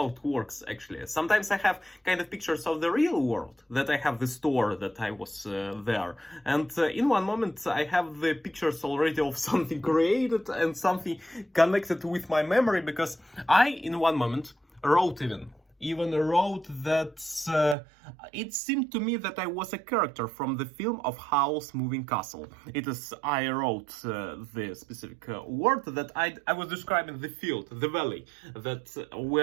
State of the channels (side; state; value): left; drops out; at 17.8 s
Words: it works actually. Sometimes I have kind of pictures of the real world, that I have the store that I was there, and in one moment I have the pictures already of something created and something connected with my memory, because I in one moment wrote even wrote that it seemed to me that I was a character from the film of Howl's Moving Castle. It is, I wrote the specific word that I was describing the field, the valley, that